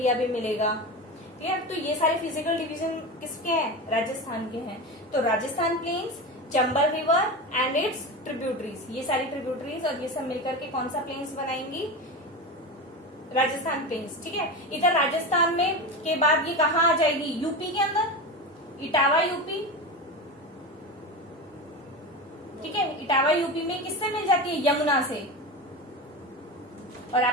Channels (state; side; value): normal; both; correlation 0.23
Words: भी मिलेगा। क्लियर? तो ये सारे फिजिकल डिवीजन किसके हैं? राजस्थान के हैं। तो Rajasthan plains, Chambal river and its tributaries, ये सारी ट्रिब्यूटरीज और ये सब मिलकर के कौन सा प्लेन्स बनाएंगी? राजस्थान प्लेन्स। ठीक है, इधर राजस्थान में के बाद ये कहाँ आ जाएगी? यूपी के अंदर, इटावा यूपी। ठीक है, इटावा यूपी में किससे मिल जाती है? यमुना से। और